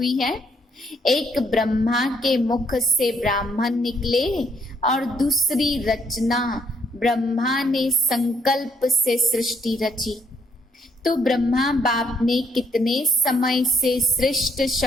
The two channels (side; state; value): both; normal; correlation 0.69